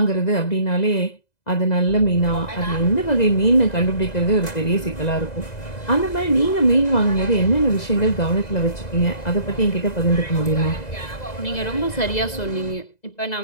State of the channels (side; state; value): right; late; 2.0 ms